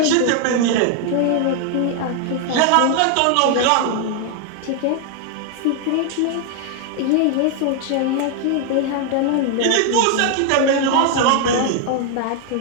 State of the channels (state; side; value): different; both; correlation 0.00